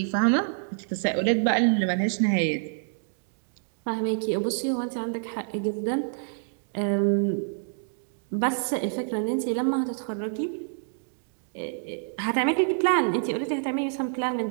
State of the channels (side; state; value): left; silent; digital silence